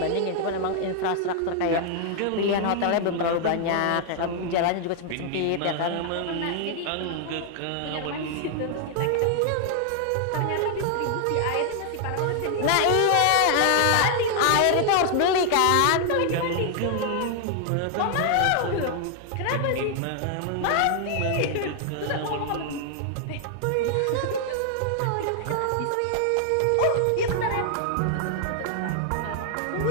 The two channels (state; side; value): different; both; correlation 0.00